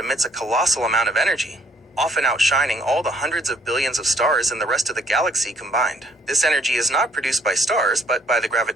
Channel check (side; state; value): both; normal; correlation 0.63